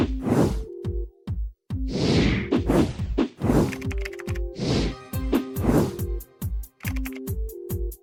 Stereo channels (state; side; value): identical; both; correlation 1.00